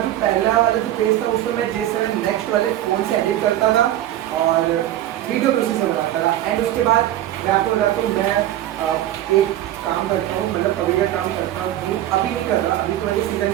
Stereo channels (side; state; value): left; quieter; 13.1 dB